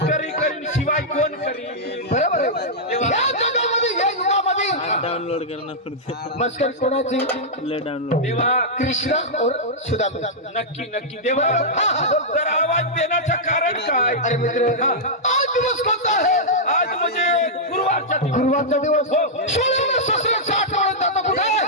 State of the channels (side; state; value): both; normal; correlation -0.09